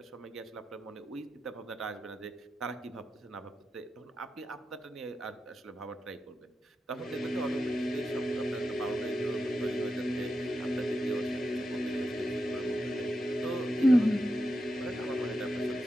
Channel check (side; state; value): both; normal; correlation 0.89